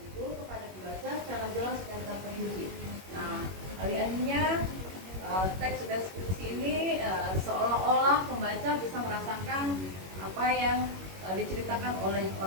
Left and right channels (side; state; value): left; late; 21 ms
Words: kepada pembaca secara jelas dan terperinci. Nah, alih-alihnya teks deskripsi ini seolah-olah pembaca bisa merasakan apa yang diceritakan oleh